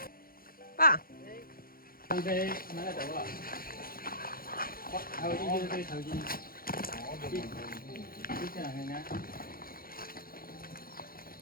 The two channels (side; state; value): right; late; 0.42 ms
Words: 爸，放开拿个头啊！头巾就是头巾，你这样看看。